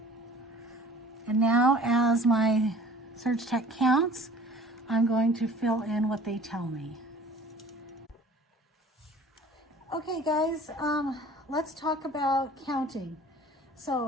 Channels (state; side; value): normal; both; correlation 0.48